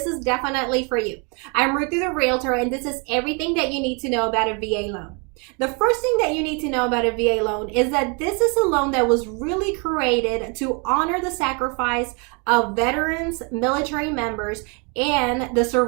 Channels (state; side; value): quieter; left; 34.0 dB